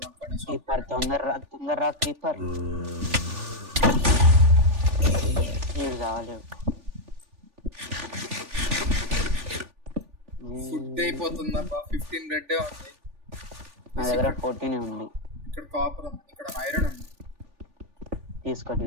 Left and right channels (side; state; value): left; late; 3.4 ms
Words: కనీసం క్రీపర్ తొందరరా క్రీపర్. కావాలి. ఫుడ్ అయిపోతుందబ్బా. 15 రెడ్ ఉంది. నా దగ్గర 14 ఉంది. ఇక్కడ కాపర్ ఉంది, ఇక్కడ ఐరన్ ఉంది.